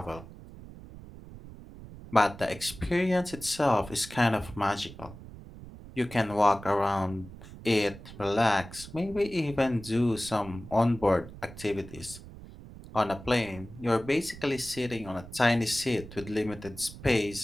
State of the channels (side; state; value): right; noise; rumble, 15 dB below the sound